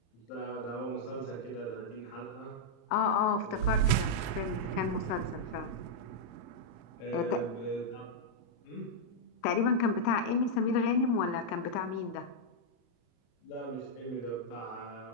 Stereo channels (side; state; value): right; late; 34 ms